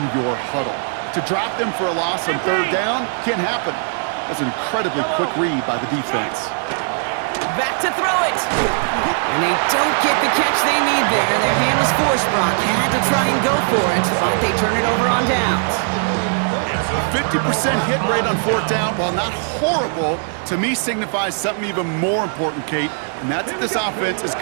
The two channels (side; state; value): left; silent; digital silence